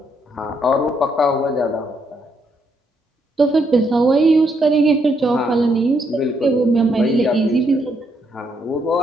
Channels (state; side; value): normal; both; correlation 0.75